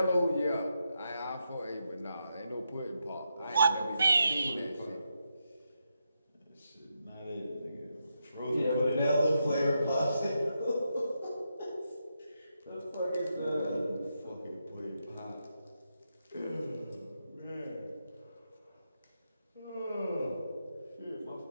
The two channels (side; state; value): both; inverted; correlation -0.84